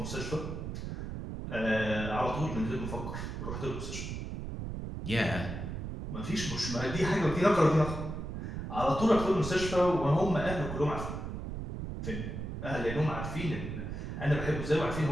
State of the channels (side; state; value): right; noise; rumble, 6 dB below the sound